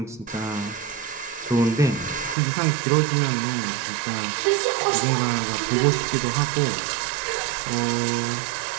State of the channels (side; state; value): left; drops out; at 2.4 s